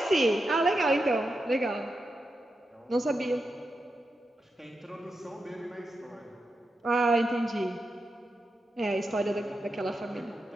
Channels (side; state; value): both; normal; correlation 0.88